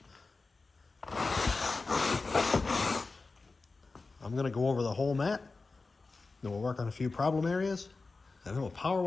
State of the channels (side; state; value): right; quieter; 3.8 dB